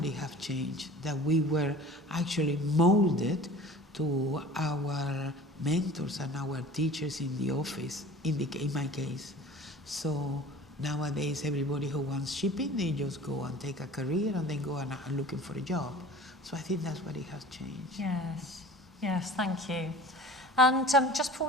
it has changed, that we were actually molded to our mentors and our teachers in the office, in my case. So nowadays, everybody who wants shipping, they just go and take a career and then go and looking for a job. So I think that's what it has changed. Yes, thank you. And just before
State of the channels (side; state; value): both; normal; correlation 0.43